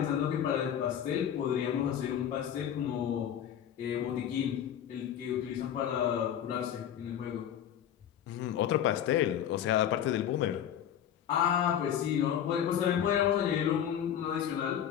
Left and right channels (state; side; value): quieter; right; 9.8 dB